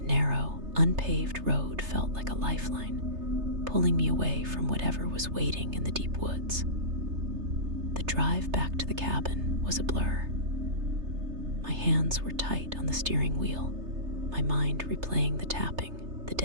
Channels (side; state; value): left; late; 3.3 ms